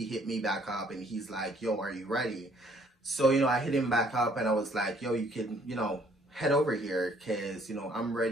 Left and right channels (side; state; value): both; normal; correlation 0.62